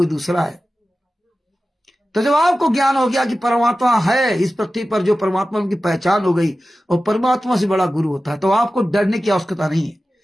दूसरा है। तो जब आपको ज्ञान हो गया कि परमात्मा है इस पृथ्वी पर, जो परमात्मा की पहचान हो गई, और परमात्मा से बड़ा गुरु होता है, तो आपको डरने की आवश्यकता नहीं है।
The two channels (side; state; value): both; normal; correlation 0.95